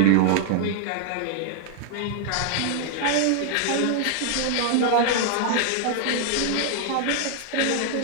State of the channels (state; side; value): different; both; correlation 0.00